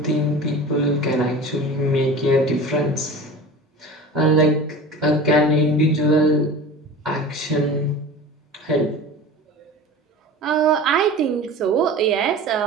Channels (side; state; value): both; normal; correlation 0.35